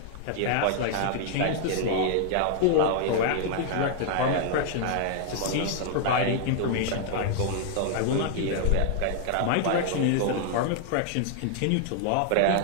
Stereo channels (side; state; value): both; different; correlation 0.00